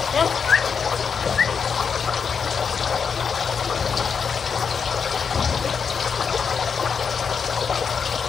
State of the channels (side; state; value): right; quieter; 6.2 dB